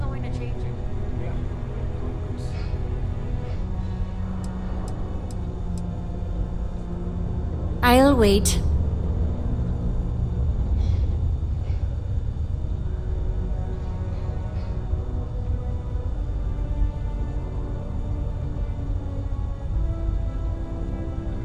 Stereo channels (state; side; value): identical; both; correlation 1.00